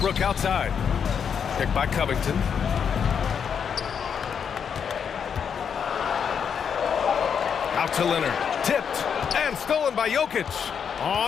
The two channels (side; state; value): right; quieter; 7.2 dB